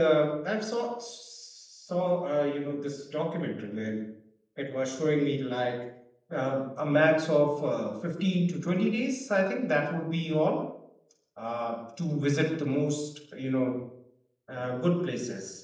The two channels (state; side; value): identical; both; correlation 1.00